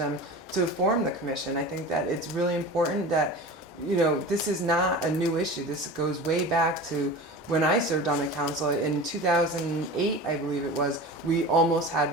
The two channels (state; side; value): normal; both; correlation 0.33